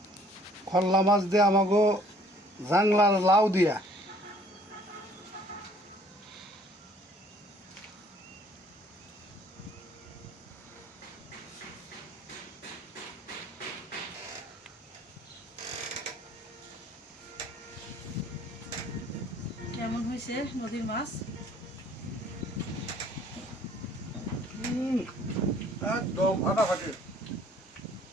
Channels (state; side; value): normal; both; correlation 0.57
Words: খল্লা মাছ দিয়ে আমাকে জাংলার লাউ দিয়া। কেমন হয়েছে নদীর মাছ? একদম ফাটাফাটি।